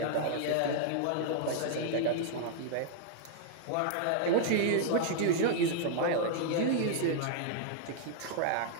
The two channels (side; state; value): both; different; correlation -0.01